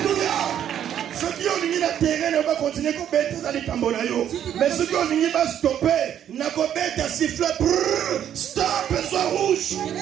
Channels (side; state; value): left; quieter; 10.0 dB